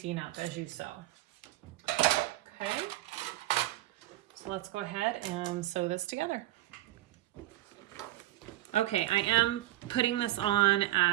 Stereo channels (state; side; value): quieter; left; 15.5 dB